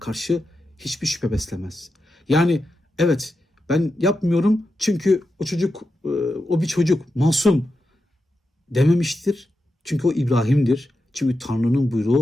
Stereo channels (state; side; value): normal; both; correlation 0.89